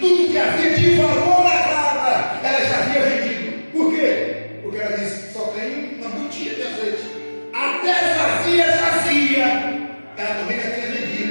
que havia de valor na casa, ela já havia vendido. Por quê? Porque ela disse: só tem uma botija de azeite. Até vazia, ela também já tinha vendido.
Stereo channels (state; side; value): inverted; both; correlation -1.00